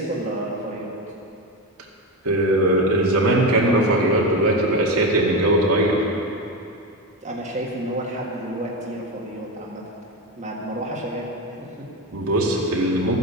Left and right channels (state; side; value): normal; both; correlation 0.17